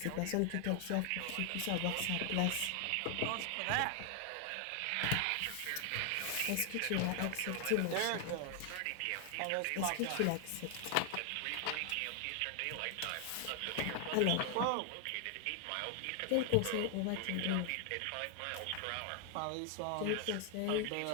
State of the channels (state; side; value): different; both; correlation 0.00